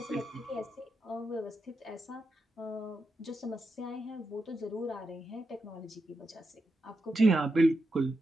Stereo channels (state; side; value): normal; both; correlation 0.86